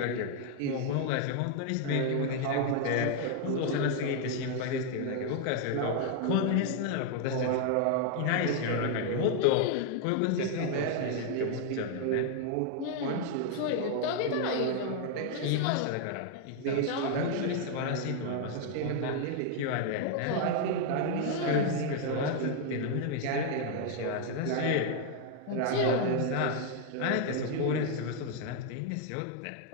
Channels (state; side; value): different; both; correlation 0.00